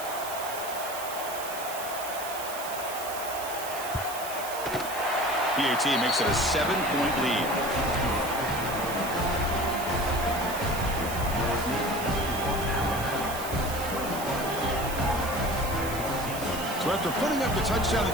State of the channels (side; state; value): right; noise; hiss, 9 dB below the sound